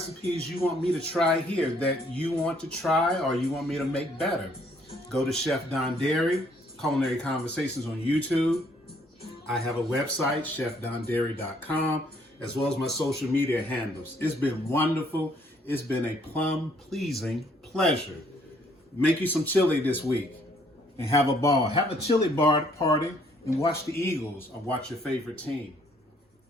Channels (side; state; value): both; normal; correlation 0.65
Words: you want me to try here that you want to try or you want me to make better. Go to Chef Dondari, Culinary Conversations on YouTube. I have a website, chefdondari.com, as well as my social media handles. It's been wonderful. It's been a plum-pleasing pleasure. Make you some chili this week and have a ball. Have a chili bar party and watch the Eagles or watch your favorite team.